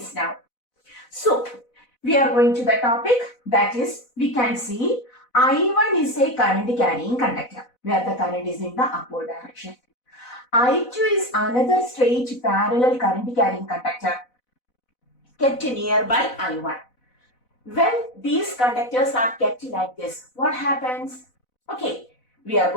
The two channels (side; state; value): right; late; 4.0 ms